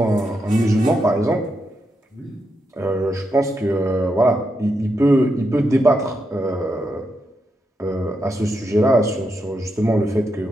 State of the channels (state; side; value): normal; both; correlation 0.83